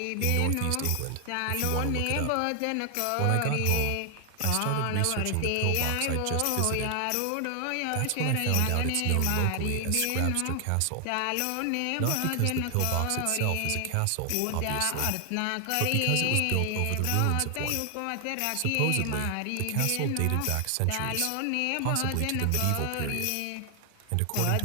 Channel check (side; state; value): both; different; correlation 0.00